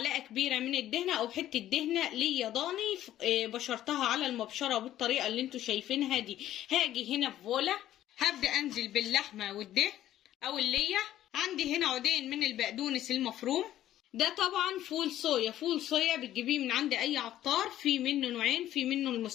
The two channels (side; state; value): right; quieter; 12.8 dB